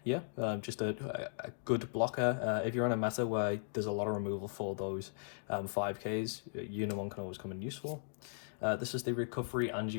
yeah, just a good blocker. If you're in a meta where there's a lot of removal for those 5Ks, Unimon can always come in useful. This is the recovery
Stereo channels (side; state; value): right; silent; digital silence